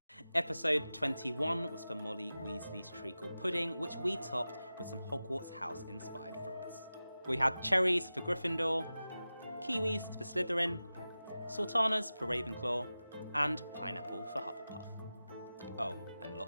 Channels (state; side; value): inverted; both; correlation -0.95